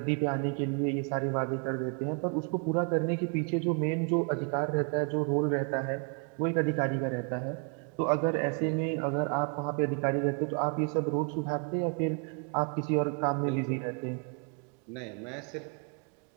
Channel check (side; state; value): left; quieter; 38.4 dB